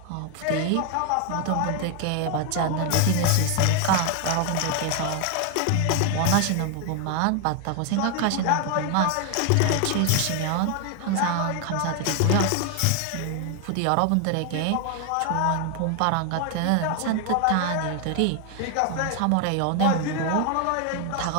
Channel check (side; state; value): both; different; correlation 0.01